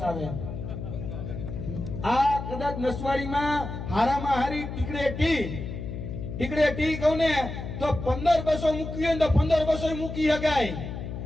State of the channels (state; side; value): noise; left; hum, 7 dB below the sound